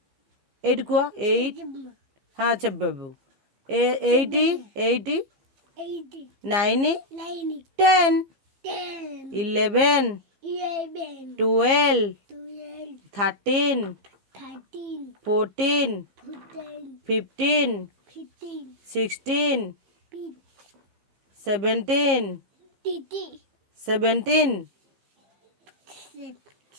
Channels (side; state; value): left; late; 15 ms